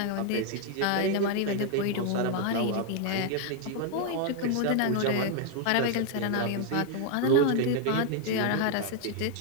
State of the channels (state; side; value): different; both; correlation 0.00